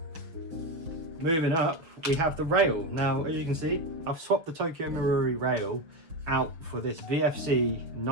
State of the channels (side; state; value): left; late; 6.3 ms